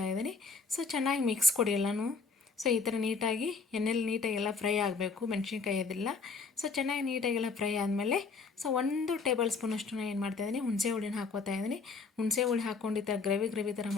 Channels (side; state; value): right; quieter; 4.7 dB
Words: ಇದ್ದೀನಿ. ಸೊ ಚೆನ್ನಾಗಿ ಮಿಕ್ಸ್ ಕೊಡಿ ಎಲ್ಲನೂ. ಸೊ ಈ ಥರ ನೀಟಾಗಿ ಎಣ್ಣೆಲಿ ನೀಟಾಗಿ ಎಲ್ಲ ಫ್ರೈ ಆಗಬೇಕು, ಮೆಣಸಿನ್ಕಾಯಿ ಅದೆಲ್ಲ. ಸೊ ಚೆನ್ನಾಗಿ ನೀಟಾಗೆಲ್ಲ ಫ್ರೈ ಆದಮೇಲೆ ಸೊ 1 ಟೇಬಲ್ ಸ್ಪೂನಷ್ಟು ನಾನು ಏನು ಮಾಡ್ತಾಯಿದ್ದೀನಿ, ಹುಣಸೆ ಹುಳಿನ ಹಾಕೋತಾ ಇದ್ದೀನಿ. ಹುಣಸೆ ಹುಳಿ ಹಾಕ್ಕೊಂಡು ಈ ಥರ ಗ್ರೇವಿ ಥರ